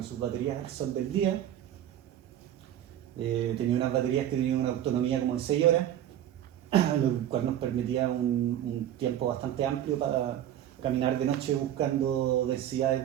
sus baterías al sol del día. Tenía unas baterías que tenían una autonomía como de 6 horas, lo cual nos permitía un tiempo bastante amplio para caminar de noche buscando densidades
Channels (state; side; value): quieter; left; 11.4 dB